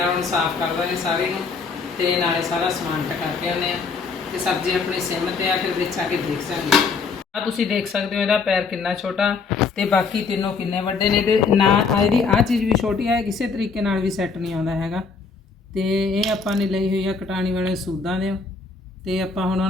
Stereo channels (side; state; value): right; quieter; 4.9 dB